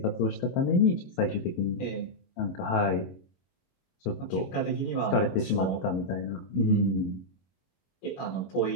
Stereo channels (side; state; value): right; late; 22 ms